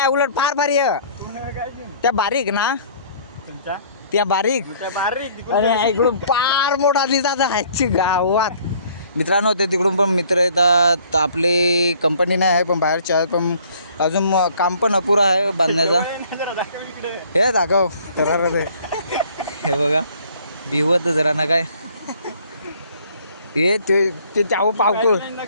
उलट फार भारी आहे त्या, बारीक ना त्या बारीक. आणि इकडून फार मोठा दिसतात ह्याची गावात. मित्रांनो ते तिकडून पण मित्र येतात. आपली कंपनी नाही आहे पण बाहेरचे आहेत, पण अजून काम पण अपुरा आहे बांधण्याचा. हे दाखव तर हे बघा भिवत जरा ना काय हे ते चाऊ पावको.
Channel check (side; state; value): both; inverted; correlation -0.57